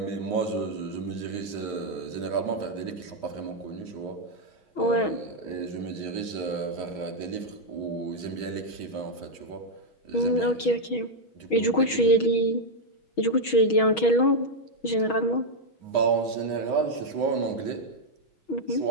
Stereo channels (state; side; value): late; right; 6.3 ms